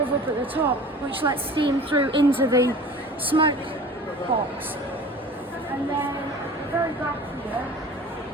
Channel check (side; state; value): both; normal; correlation 0.42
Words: up at the top, which lets steam through into the smoke box. And then at the very back here,